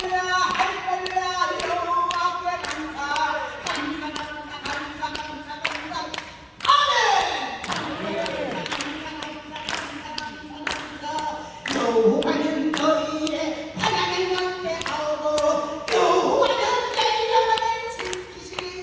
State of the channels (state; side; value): identical; both; correlation 1.00